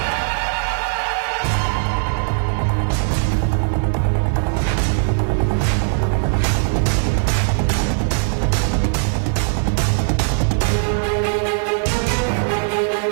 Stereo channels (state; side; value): silent; left; 66 dB below the other